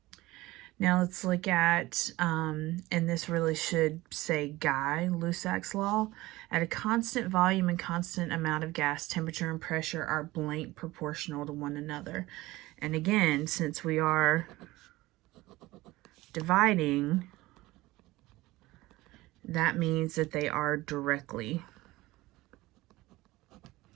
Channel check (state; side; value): quieter; left; 19.0 dB